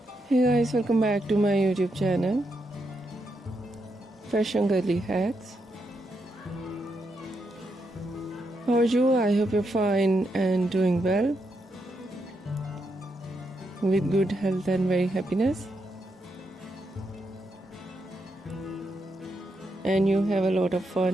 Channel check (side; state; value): both; normal; correlation 0.82